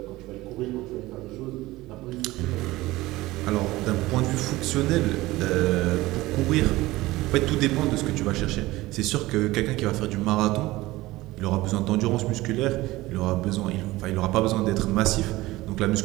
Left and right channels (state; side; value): quieter; left; 18.7 dB